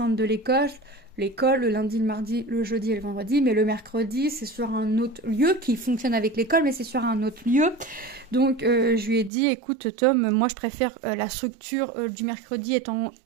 de l'école. l'école le lundi, le mardi, le jeudi et le vendredi, mais le mercredi, c'est sur un autre lieu qui fonctionne avec l'école, mais c'est sur un autre lieu. Donc, je lui ai dit, écoute, Tom, moi, je préfère la structure du mercredi étant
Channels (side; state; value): left; drops out; at 9.3 s